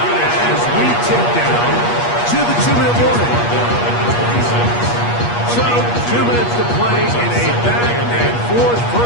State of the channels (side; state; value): right; late; 8.4 ms